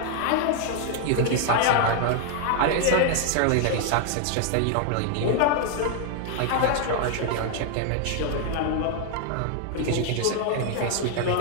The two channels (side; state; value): both; different; correlation 0.00